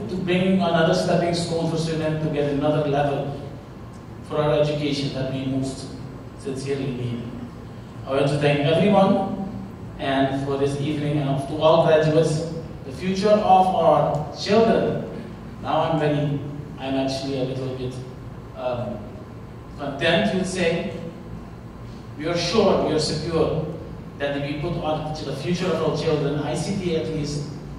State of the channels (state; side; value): identical; both; correlation 1.00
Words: to bringing another stepping stone for Suriname to get another level for our education that we most sincerely need. I want to thank everyone and for this evening, and to all graduates, the future of our children. Now I'm actually a little bit content, you'd say. We are sure, we are secure that if we put on to the future of our children, ICT at least,